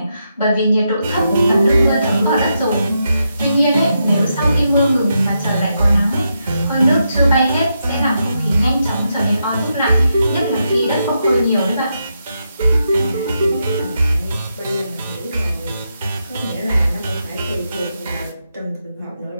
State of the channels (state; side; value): inverted; both; correlation -0.83